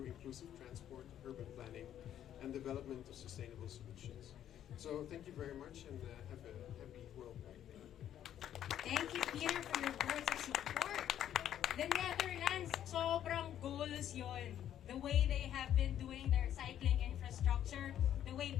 inclusive transport, urban planning, and development of sustainable solutions. So, thank you very much, and have a happy World Bike Day. Thank you, Peter, for your words of support. The Netherlands, sobrang goals yon. The way they have been doing their cycling infrastructure, the way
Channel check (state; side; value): quieter; right; 10.7 dB